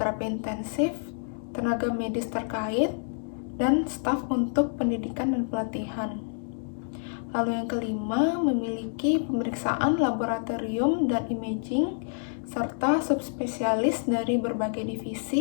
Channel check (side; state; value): right; silent; digital silence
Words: intensif, tenaga medis terkait, dan staf untuk pendidikan dan pelatihan. Lalu yang kelima, memiliki pemeriksaan laboratorium dan imaging, serta subspesialis dari berbagai